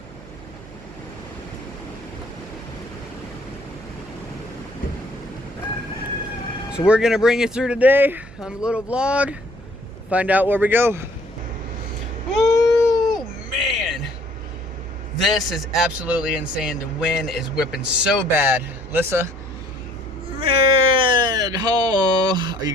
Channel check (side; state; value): right; noise; hum, 19 dB below the sound